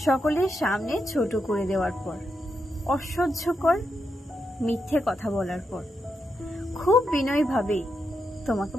সকলের সামনে ছোট করে দেওয়ার পর, অসহ্যকর মিথ্যে কথা বলার পর খুব বিনয়ীভাবেই তোমাকে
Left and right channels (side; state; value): both; normal; correlation 0.84